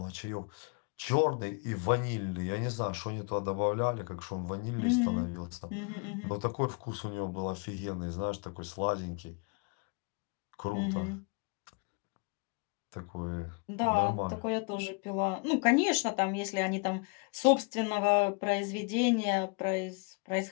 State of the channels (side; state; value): right; quieter; 34.0 dB